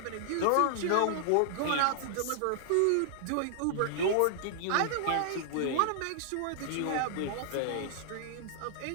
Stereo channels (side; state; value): both; different; correlation -0.01